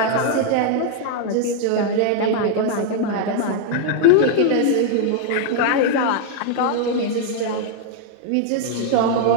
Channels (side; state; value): both; different; correlation 0.00